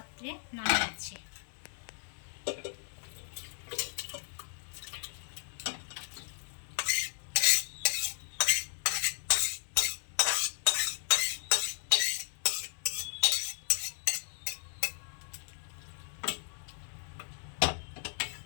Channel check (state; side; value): silent; right; 55 dB below the other